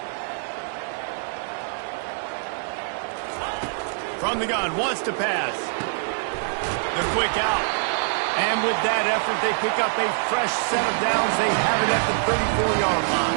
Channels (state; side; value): silent; left; digital silence